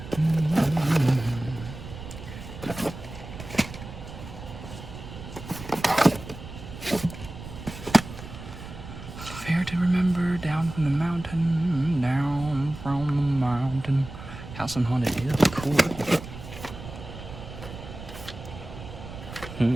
House on Haunted Hill. Cool.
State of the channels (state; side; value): noise; right; rumble, 12 dB below the sound